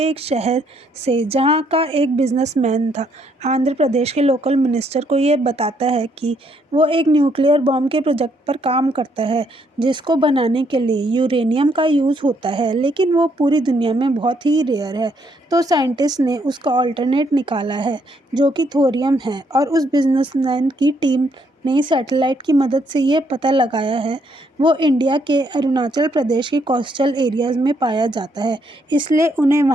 एक शहर से, जहाँ का एक बिजनेसमैन था आंध्र प्रदेश के लोकल मिनिस्टर को ये बताता है कि वो एक न्यूक्लियर बॉम्ब के प्रोजेक्ट पर काम करता है, जिसको बनाने के लिए यूरेनियम का यूज़ होता है, लेकिन वो पूरी दुनिया में बहुत ही रेयर है। तो साइंटिस्ट ने उसका ऑल्टरनेट निकाला है, जो कि थोरियम है, और उस बिजनेसमैन की टीम ने सैटेलाइट की मदद से ये पता लगाया है वो इंडिया के अरुणाचल प्रदेश के कोस्टल एरियाज़ में पाया जाता है। इसलिए उन्हें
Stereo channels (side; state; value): both; normal; correlation 0.72